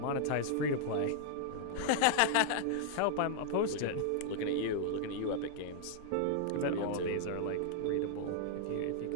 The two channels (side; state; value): both; different; correlation -0.01